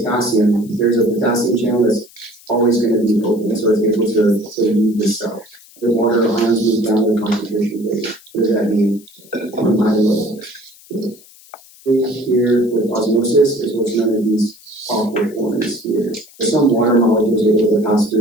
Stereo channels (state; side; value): noise; left; hiss, 24 dB below the sound